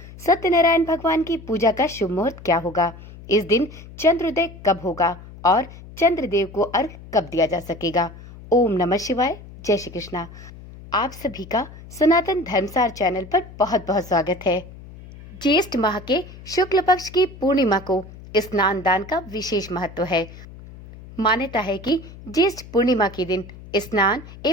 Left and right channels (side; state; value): left; noise; hum, 17 dB below the sound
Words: सत्यनारायण भगवान की पूजा का शुभ मुहूर्त क्या होगा, इस दिन चंद्रोदय कब होगा और चंद्रदेव को अर्घ कब दिया जा सकेगा। ओम नमः शिवाय, जय श्री कृष्णा। आप सभी का सनातन धर्मसार चैनल पर बहुत बहुत स्वागत है। ज्येष्ठ माह के शुक्ल पक्ष की पूर्णिमा को स्नान दान का विशेष महत्व है। मान्यता है कि ज्येष्ठ पूर्णिमा के दिन स्नान